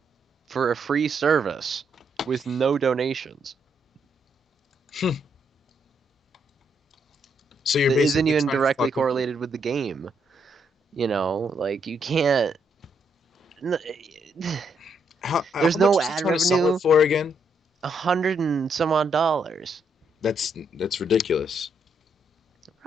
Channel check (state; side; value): normal; both; correlation 0.75